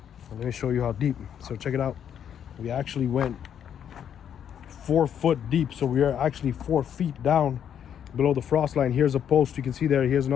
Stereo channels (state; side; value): quieter; right; 9.0 dB